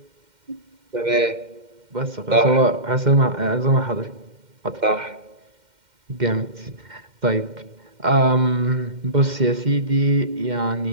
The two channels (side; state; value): left; late; 2.1 ms